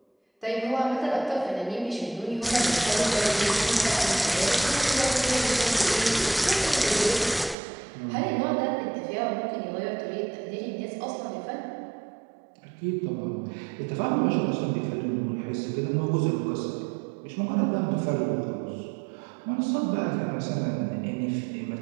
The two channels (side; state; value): left; drops out; at 7.6 s